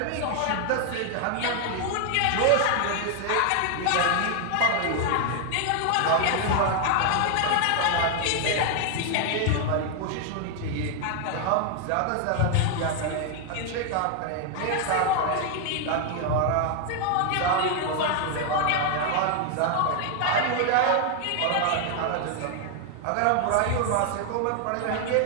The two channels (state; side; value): different; both; correlation 0.00